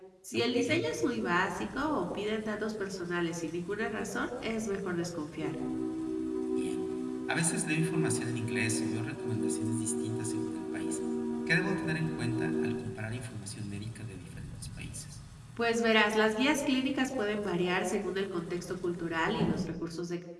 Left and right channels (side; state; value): both; identical; correlation 1.00